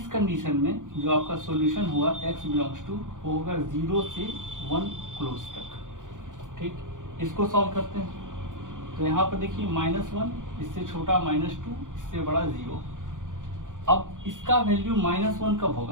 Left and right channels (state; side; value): late; left; 0.87 ms